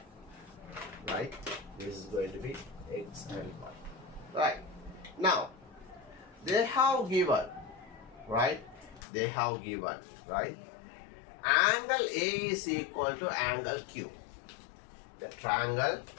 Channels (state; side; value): drops out; right; at 9.0 s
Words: Right, this is going to be x and y. Right, now they have given, right, they have given, right, angle A is equal to angle Q. The triangle